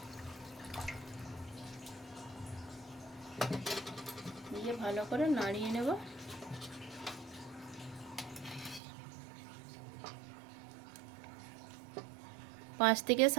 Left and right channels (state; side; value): drops out; left; at 8.8 s